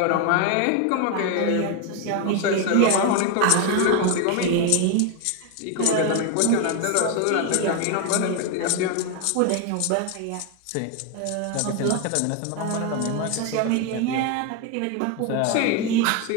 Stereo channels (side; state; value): both; different; correlation 0.01